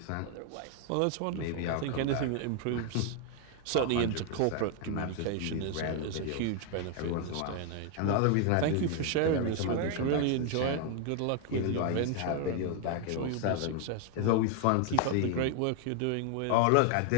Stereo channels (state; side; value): different; both; correlation 0.00